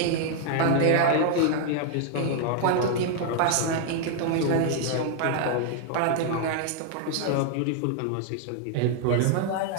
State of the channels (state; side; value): different; both; correlation 0.00